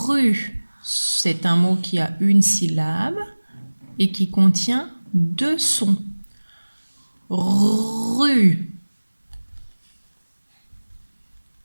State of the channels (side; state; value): both; inverted; correlation -1.00